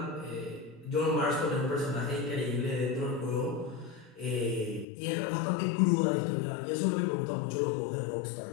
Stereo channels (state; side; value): drops out; right; at 4.9 s